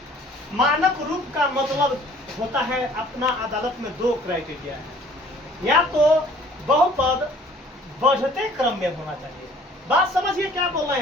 मानक रूप का मतलब होता है अपना अदालत में 2 क्राइटेरिया है। या तो बहुपद बढ़ते क्रम में होना चाहिए। बात समझिए क्या बोल रहे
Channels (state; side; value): normal; both; correlation 0.54